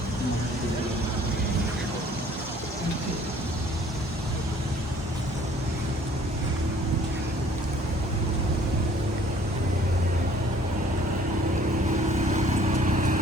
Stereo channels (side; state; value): both; normal; correlation 0.56